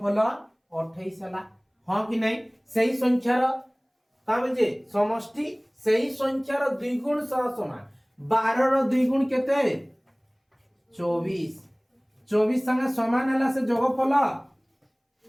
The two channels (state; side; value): identical; both; correlation 1.00